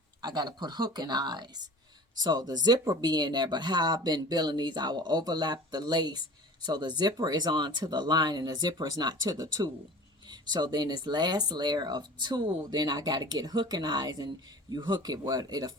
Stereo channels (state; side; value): normal; both; correlation 0.40